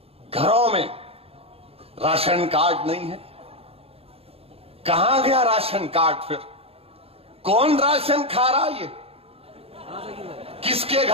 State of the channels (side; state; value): left; late; 0.28 ms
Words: घरों में राशन कार्ड नहीं है। कहां गया राशन कार्ड? फिर कौन राशन खा रहा है? ये किसके